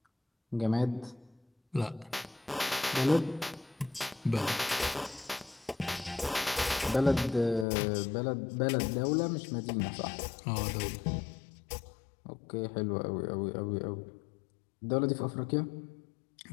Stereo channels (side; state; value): right; drops out; at 7.7 s